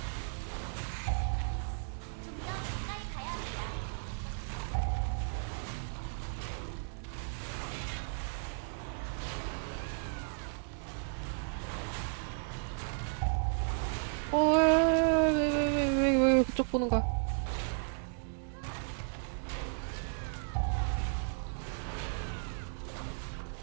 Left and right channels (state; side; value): silent; left; digital silence